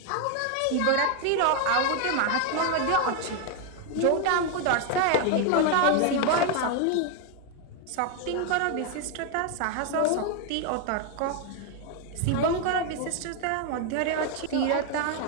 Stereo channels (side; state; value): both; different; correlation 0.01